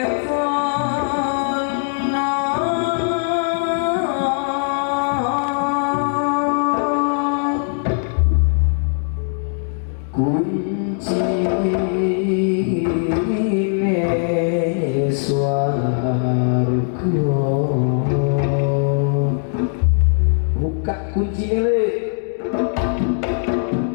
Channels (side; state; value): right; silent; digital silence